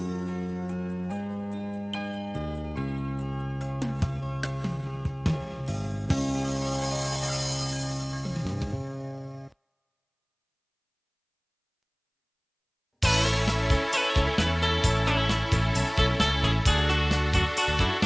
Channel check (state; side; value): identical; both; correlation 1.00